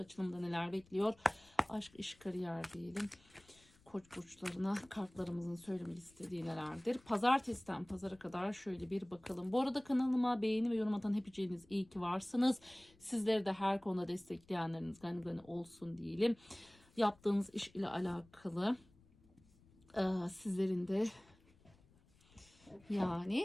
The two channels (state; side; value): noise; left; rumble, 29 dB below the sound